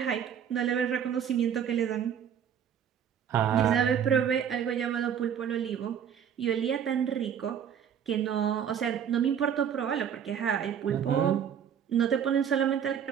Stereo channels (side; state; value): left; quieter; 8.5 dB